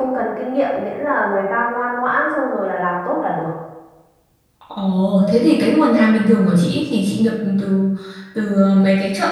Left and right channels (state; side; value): identical; both; correlation 1.00